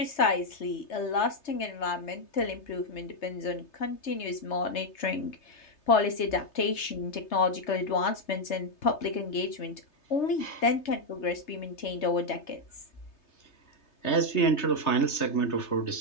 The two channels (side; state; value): right; late; 3.3 ms